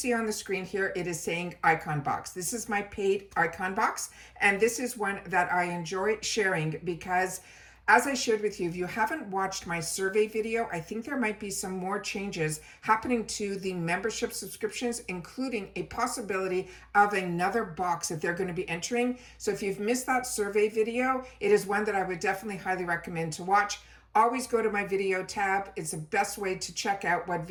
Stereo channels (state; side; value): identical; both; correlation 1.00